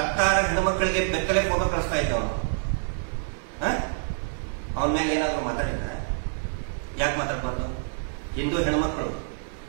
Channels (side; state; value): left; silent; 60 dB below the other